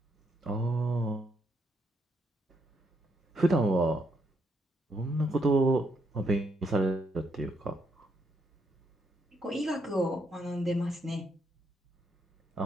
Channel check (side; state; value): both; normal; correlation 0.76